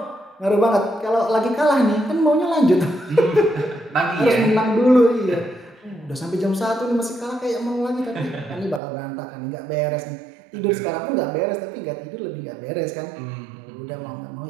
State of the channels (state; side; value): drops out; left; at 8.8 s